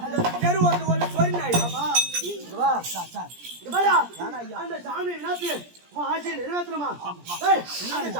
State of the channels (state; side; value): late; left; 17 ms